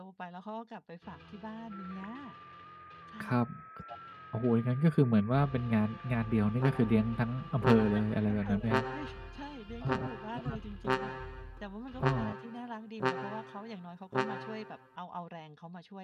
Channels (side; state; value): both; identical; correlation 1.00